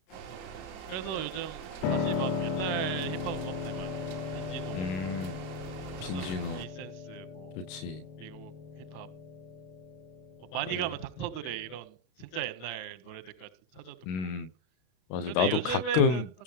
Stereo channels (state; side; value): late; right; 32 ms